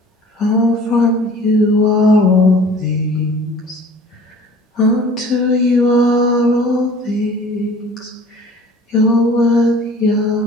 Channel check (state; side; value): normal; both; correlation 0.47